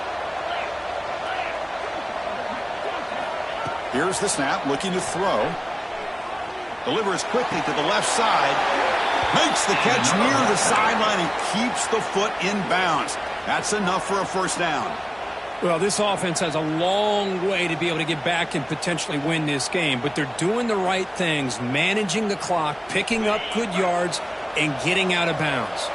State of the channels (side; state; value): both; identical; correlation 1.00